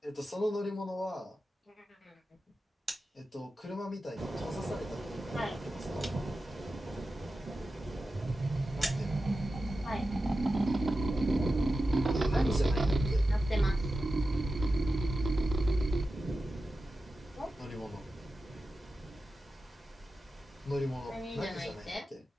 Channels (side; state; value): both; normal; correlation 0.92